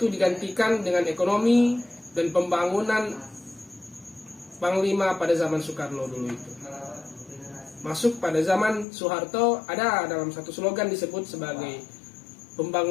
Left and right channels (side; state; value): right; drops out; at 8.8 s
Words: digantikan dengan ekonomi dan pembangunan panglima pada zaman Soekarno dulu itu. Masuk pada zaman Soeharto, ada dalam satu slogan disebut sebagai